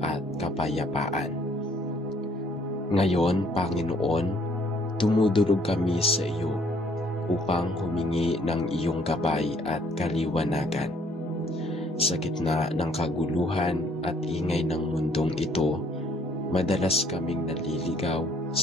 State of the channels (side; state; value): both; normal; correlation 0.63